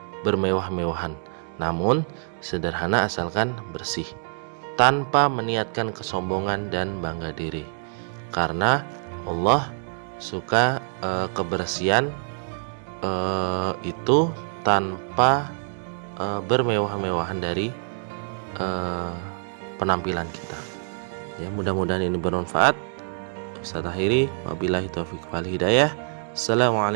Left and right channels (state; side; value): silent; left; digital silence